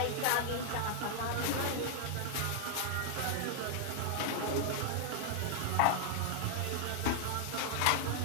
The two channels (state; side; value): different; both; correlation 0.00